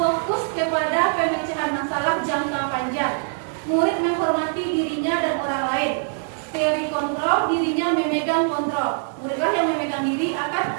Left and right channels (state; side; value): silent; left; digital silence